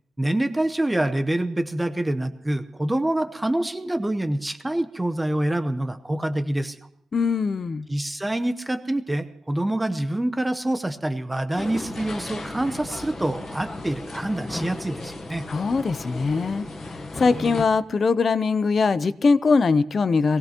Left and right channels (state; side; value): normal; both; correlation 0.93